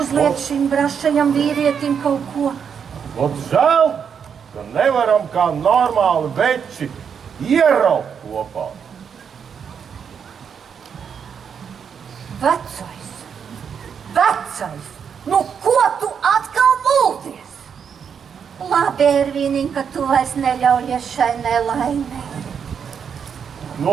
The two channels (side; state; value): left; quieter; 7.2 dB